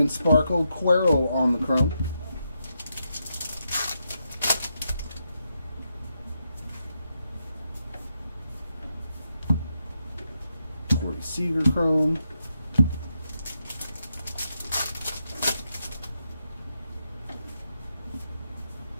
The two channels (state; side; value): inverted; both; correlation -0.83